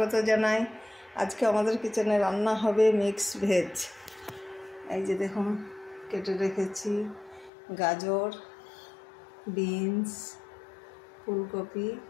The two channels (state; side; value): drops out; right; at 7.5 s